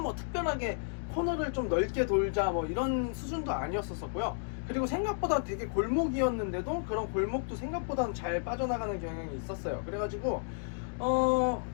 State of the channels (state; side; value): silent; right; digital silence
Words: 특별하게 코너를 좀 넓게 돌자 이런 수준도 아니었었고요. 그리고 생각보다 되게 골목이었는데도 그런 골목도 생각보다는 잘 빠져나가는 경향이 있었어요. 그래가지고